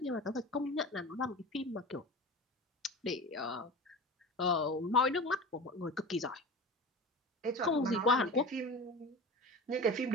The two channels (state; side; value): normal; both; correlation 0.32